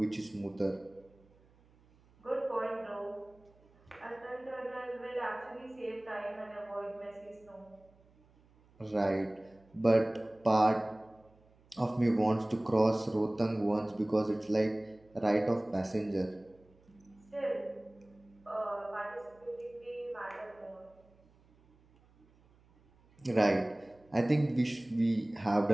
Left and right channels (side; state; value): right; noise; hum, 30 dB below the sound